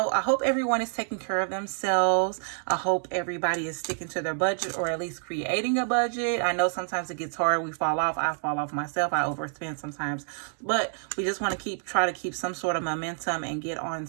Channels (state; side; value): silent; left; 59 dB below the other